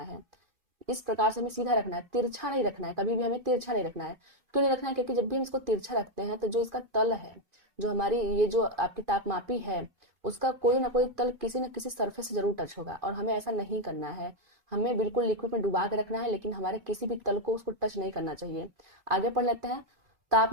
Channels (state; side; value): late; left; 2.4 ms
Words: इस प्रकार से हमें सीधा रखना है, तिरछा नहीं रखना है, कभी भी हमें तिरछा नहीं रखना है। क्यों नहीं रखना है? क्योंकि जब भी हम इसको तिरछा रखते हैं तो जो इसका तल है, जो हमारी ये जो आपकी तापमापी है उसका कोई ना कोई तल किसी न किसी सरफेस से जरूर टच होगा, और हमें ऐसा नहीं करना है। हमें बिल्कुल लिक्विड में डुबा के रखना है, लेकिन हमारे किसी भी तल को उसको टच नहीं करना चाहिए। आगे पढ़ लेते हैं।